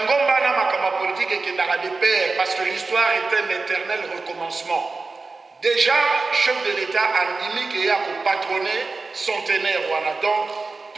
na makambo ya politique ekendaka de pair parce que l'histoire est un éternel recommencement. Déjà, chef de l'État andimi ke ya ko patronner centenaire wana donc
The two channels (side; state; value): left; quieter; 3.9 dB